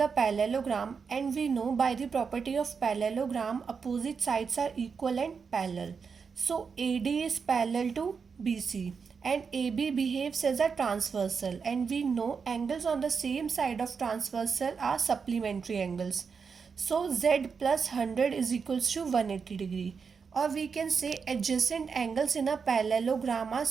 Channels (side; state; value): left; quieter; 5.7 dB